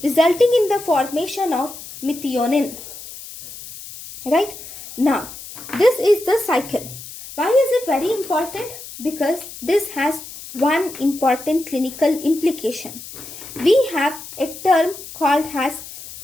resulting in the formation of methionine. Right? Now, this is the cycle. Why is it very important? Because this has one important clinical implication. We have a term called as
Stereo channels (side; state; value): left; noise; hiss, 14 dB below the sound